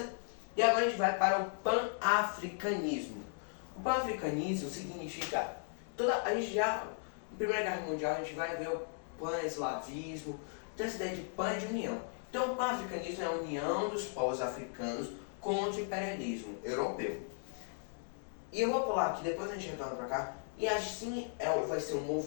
E agora a gente vai para o pan-africanismo. O pan-africanismo significa, a gente já, na Primeira Guerra Mundial, a gente vai ver o pan-eslavismo, então essa ideia de pan é de união. Então o pan-africanismo é a união dos povos africanos contra o imperialismo europeu. E eu vou pular aqui, depois a gente retorna para cá. E assim vai ser um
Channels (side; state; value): right; silent; digital silence